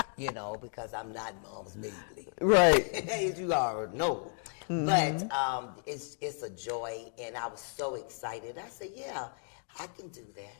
because I'm not Moms Mabley. Right. As you already know. But it's a joy, and I was so excited. I said, yeah, I can do that.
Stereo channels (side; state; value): right; silent; 55 dB below the other